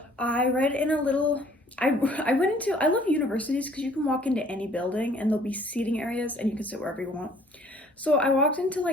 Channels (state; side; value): normal; both; correlation 0.57